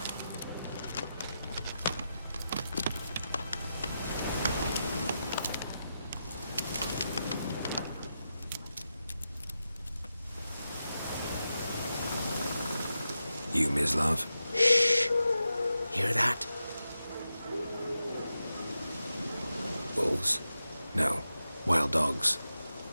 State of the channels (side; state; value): both; inverted; correlation -0.89